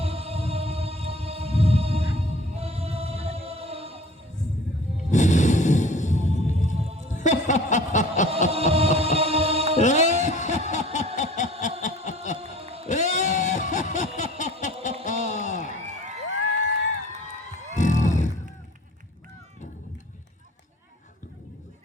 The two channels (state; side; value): normal; both; correlation 0.47